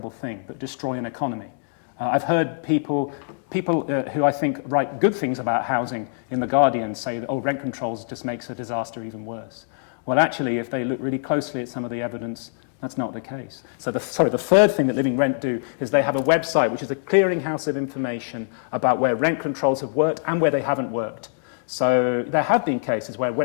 thing that destroy an economy. I've heard people who I think write good things about housing in The Guardian say that, rent controls just makes a disaster even worse. Well, actually, if they look really closely at some of the evidence, That's not the case. So the third thing that Living Rent do is they have a website which is a clearinghouse of information about where rent controls have worked and where they haven't worked. So there have been cases where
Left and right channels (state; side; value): silent; right; digital silence